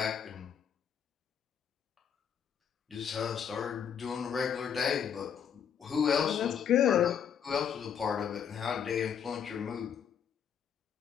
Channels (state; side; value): quieter; right; 8.0 dB